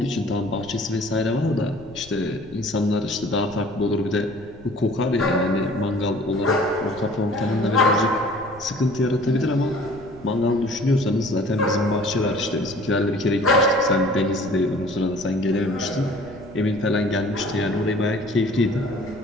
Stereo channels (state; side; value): noise; left; rumble, 21 dB below the sound